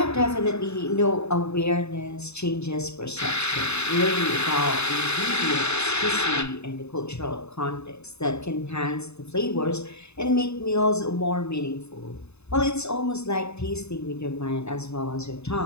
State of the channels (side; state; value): right; late; 0.81 ms